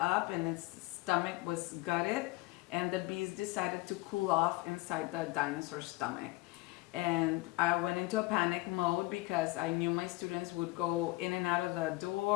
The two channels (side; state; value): right; quieter; 21.1 dB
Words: and its stomach was gutted, and the bees decided to cool off inside the dinosaur's stomach. And I went into a panic mode because I knew my students would go in and out of the